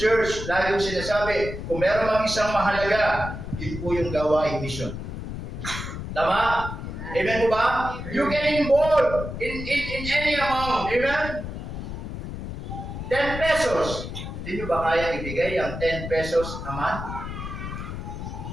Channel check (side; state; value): left; noise; rumble, 7 dB below the sound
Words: lagi kong sinasabi, kung meron mang isang mahalaga, yun po yung gawain mission. Tama? Amen po ba? You can involve in any amount. Amen? 10 pesos. Hindi nyo ba kaya ibigay ang 10 pesos a month?